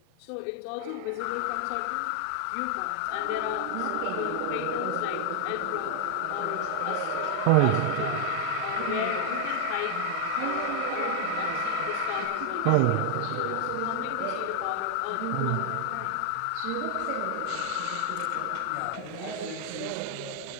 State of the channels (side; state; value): both; different; correlation 0.00